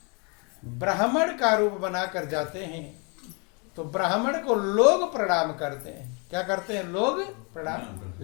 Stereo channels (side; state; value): right; quieter; 33.7 dB